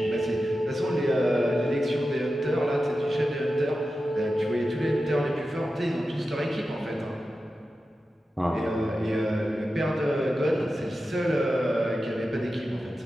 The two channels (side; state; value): both; normal; correlation 0.92